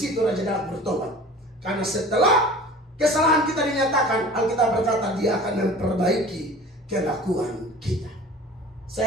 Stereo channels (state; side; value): normal; both; correlation 0.42